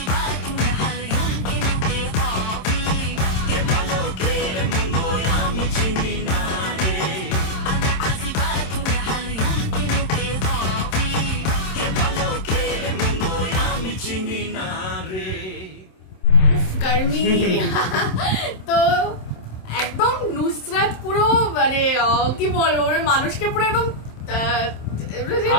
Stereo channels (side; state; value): right; late; 27 ms